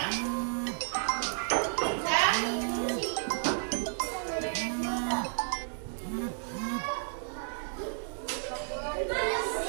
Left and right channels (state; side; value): silent; left; digital silence